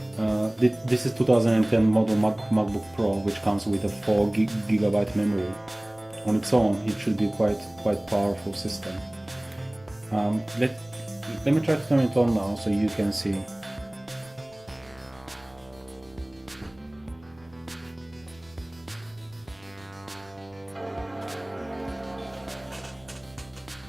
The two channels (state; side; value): noise; left; rumble, 26 dB below the sound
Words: This is 2010 model MacBook Pro, which comes with a 4 GB memory. On its own, it should be quite powerful system. Let me try to turn it on now so you can see.